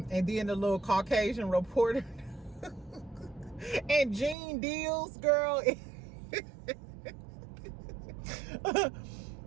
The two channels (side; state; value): left; drops out; at 4.4 s